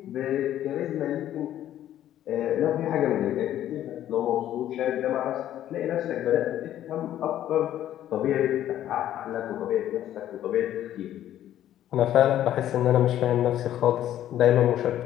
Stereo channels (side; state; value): right; quieter; 12.0 dB